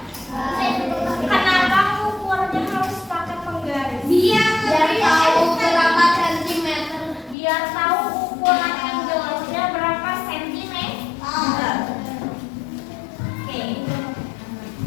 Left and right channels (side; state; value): right; drops out; at 7.4 s